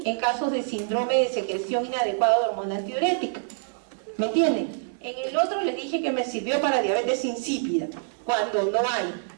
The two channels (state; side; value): silent; left; digital silence